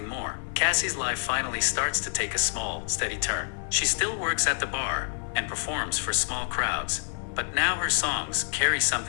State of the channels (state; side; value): silent; right; 56 dB below the other